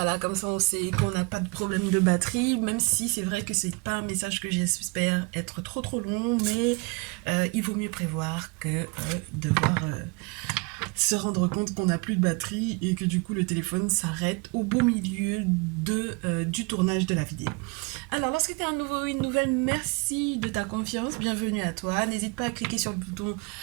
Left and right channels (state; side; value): quieter; left; 29.4 dB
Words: comme ça on sait qu'on n'a pas de problème de batterie, même si c'est vrai que c'est pas un message que j'espère être trop long, mais il vaut mieux prévoir que devoir se rendre compte qu'on n'a plus de batterie et que du coup le téléphone s'arrête au beau milieu du tournage de la vidéo. Alors, lorsque tu es un nouveau ou une nouvelle, merci de ta confiance, bienvenue à toi. N'hésite pas à cliquer sur le bouton